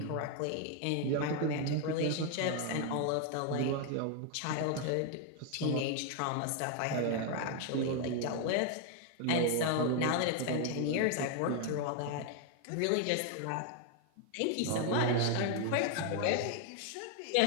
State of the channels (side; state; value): both; different; correlation 0.00